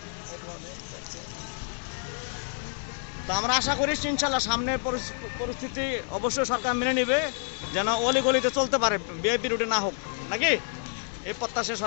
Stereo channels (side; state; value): right; silent; 59 dB below the other